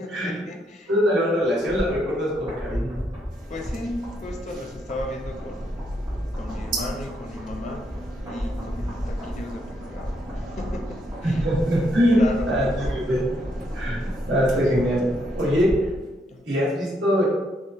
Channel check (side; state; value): both; normal; correlation 0.76